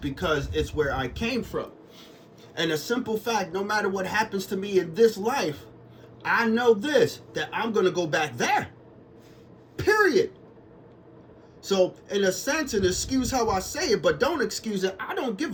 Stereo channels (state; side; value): identical; both; correlation 1.00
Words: it's where I came from. And a simple fact, no matter what happens to me in this life, I know this, that I'm going to go back there. Period. So, in a sense, and excuse how I say it, but don't excuse it, I don't give